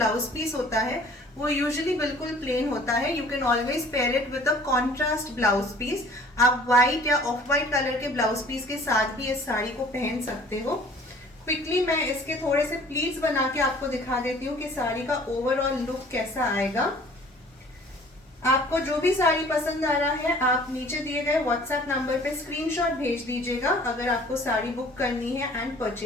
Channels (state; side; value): normal; both; correlation 0.51